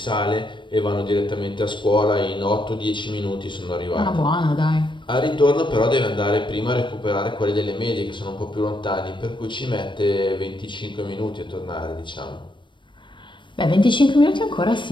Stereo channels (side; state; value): right; late; 0.23 ms